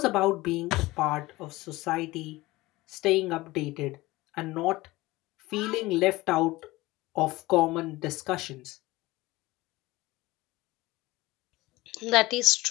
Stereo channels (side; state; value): right; quieter; 19.6 dB